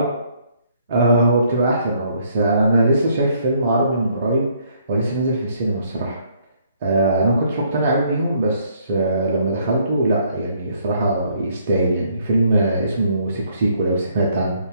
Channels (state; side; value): inverted; both; correlation -0.67